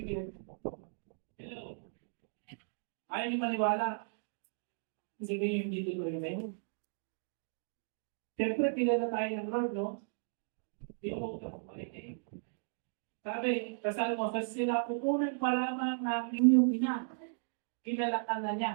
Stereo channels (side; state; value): left; silent; digital silence